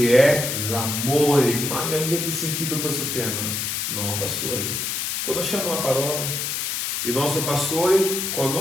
è l'amore. Mai avete sentito questo tema? No, pastore. Conosciamo la parola. Il nostro pastore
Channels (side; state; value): left; noise; hiss, 2 dB below the sound